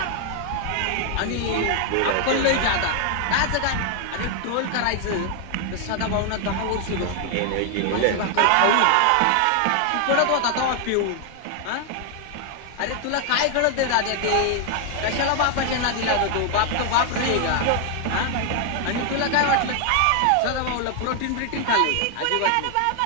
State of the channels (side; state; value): both; different; correlation 0.00